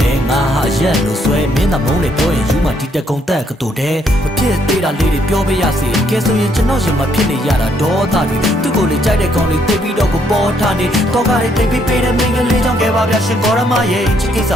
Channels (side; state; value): both; normal; correlation 0.71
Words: ည်းငါဟာရက်လို့ဆွဲမင်းသာမုန်းလေပြောရင်ယူမှဒီတကုံတက်ကတူတဲ့မဖြစ်သေးတာလေးတွေပြောပြရစေကဲဆိုရင်ကျွန်တော်ရင်မဖြစ်နေရတာဒေါသတွေသူ့ကိုလေကြိုက်တဲ့ကောင်လေးသိပြီးတော့ကိုပေါ်ထားနေတော့ကားလေးတိတ်ပြီးပေးတဲ့မင်းကလေးကြောင့်ခဲ့ပါဗျာရှင်ကောရမရဲ့ချစ်ကိစ္စ